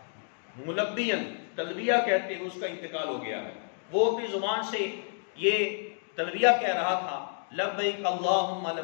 ملبین تلبیہ کہتے ہیں اس کا انتقال ہو گیا ہے. وہ اپنی زبان سے یہ تلبیہ کہہ رہا تھا، لبیک اللہم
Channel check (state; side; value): silent; right; 58 dB below the other